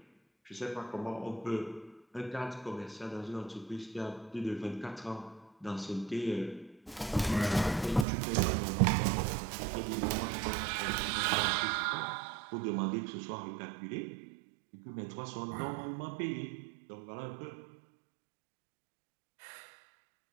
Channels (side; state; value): left; drops out; at 8.1 s